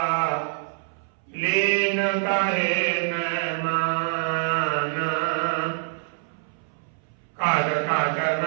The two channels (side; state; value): left; silent; 61 dB below the other